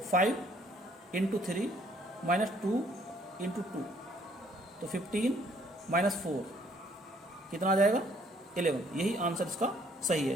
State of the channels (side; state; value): both; normal; correlation 0.63